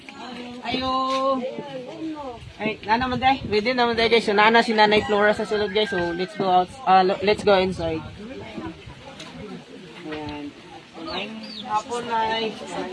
Ayo. Ay, naman day. Ready naman day guys. So, nana si Nanay Flora sa sulod guys. So, let's go out. Let's go inside. Ayan. So, ngayong hapon na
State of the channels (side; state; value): both; identical; correlation 1.00